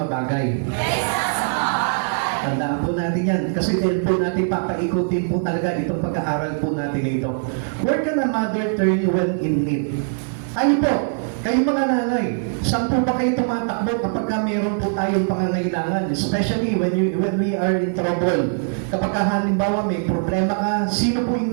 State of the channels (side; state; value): left; silent; 65 dB below the other